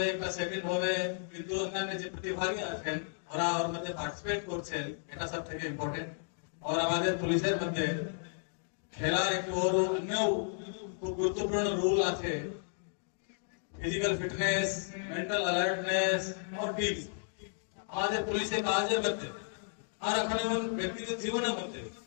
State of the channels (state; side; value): silent; right; digital silence